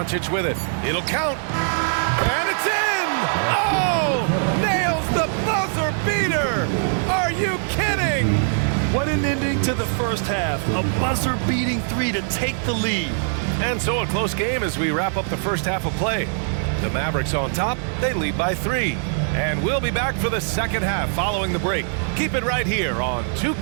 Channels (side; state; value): left; silent; digital silence